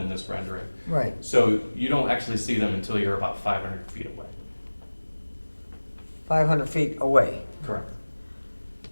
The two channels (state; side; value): inverted; both; correlation -1.00